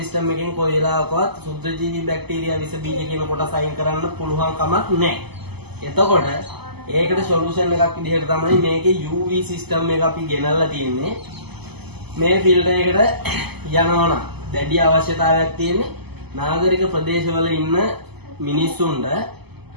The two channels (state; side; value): late; left; 0.98 ms